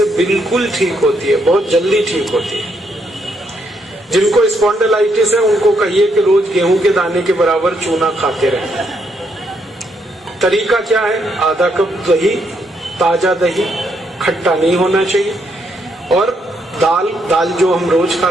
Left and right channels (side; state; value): both; normal; correlation 0.75